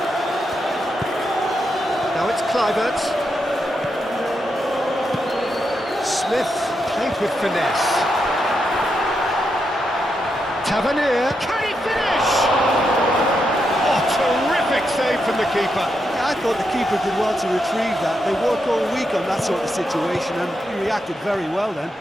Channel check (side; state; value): both; normal; correlation 0.83